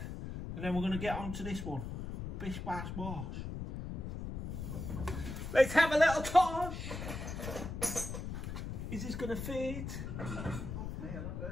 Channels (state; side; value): noise; left; rumble, 6 dB below the sound